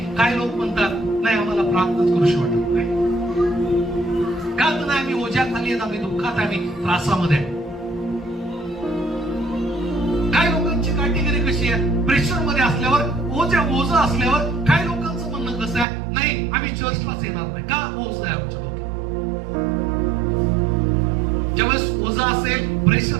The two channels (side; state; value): left; drops out; at 15.9 s